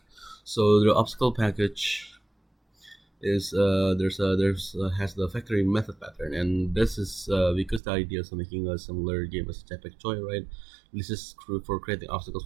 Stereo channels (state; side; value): drops out; left; at 7.8 s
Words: So the obstacle package is has the factory method pattern, and this is because the idea is making a similar game as Jetpack Joyride. This is for creating obstacles